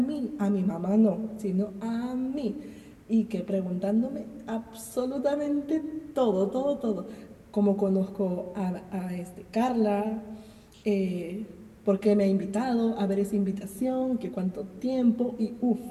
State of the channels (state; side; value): identical; both; correlation 1.00